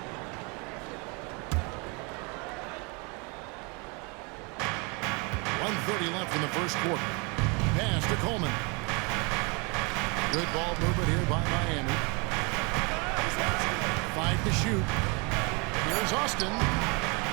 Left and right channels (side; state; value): left; quieter; 30.6 dB